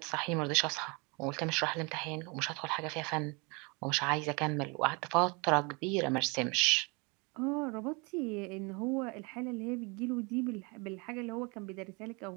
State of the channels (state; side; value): quieter; left; 29.7 dB